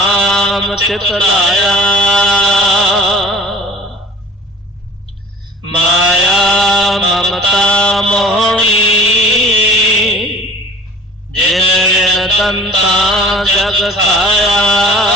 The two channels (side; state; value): both; normal; correlation 0.43